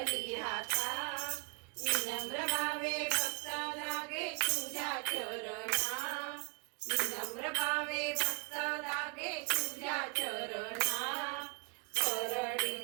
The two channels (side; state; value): left; quieter; 34.0 dB